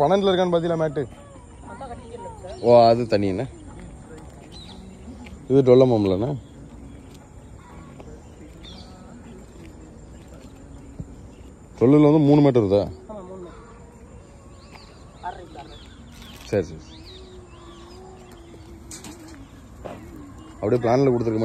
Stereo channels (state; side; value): identical; both; correlation 1.00